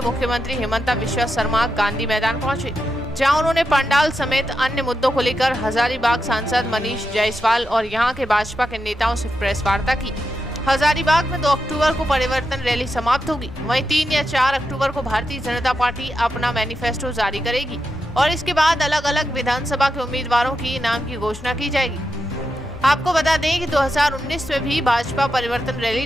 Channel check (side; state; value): both; normal; correlation 0.87